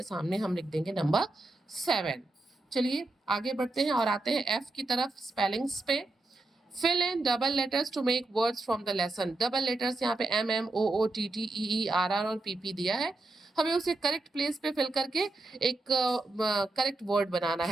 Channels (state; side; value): quieter; left; 3.0 dB